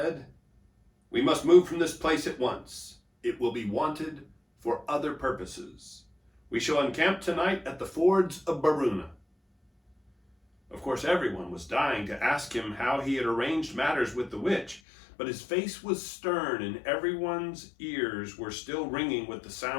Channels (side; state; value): right; drops out; at 14.8 s